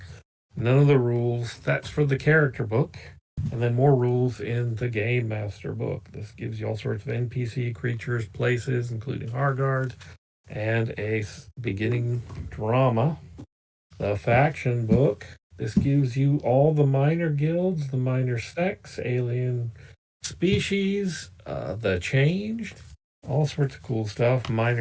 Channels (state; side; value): identical; both; correlation 1.00